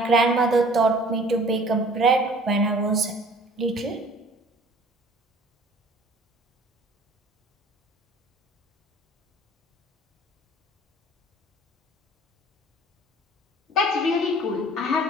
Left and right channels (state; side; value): normal; both; correlation 0.51